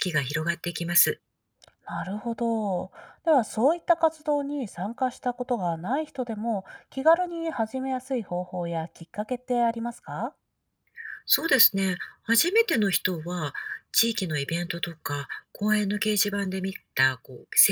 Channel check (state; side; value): identical; both; correlation 1.00